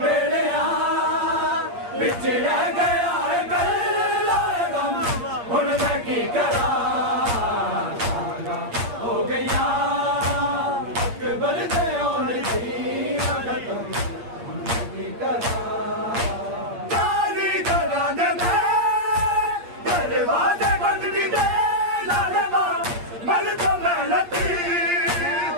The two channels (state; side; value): late; left; 8.5 ms